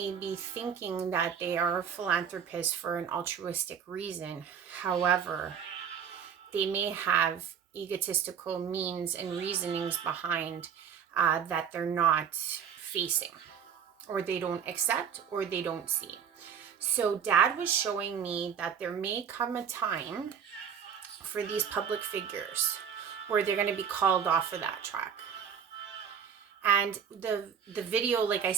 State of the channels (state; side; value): quieter; left; 7.7 dB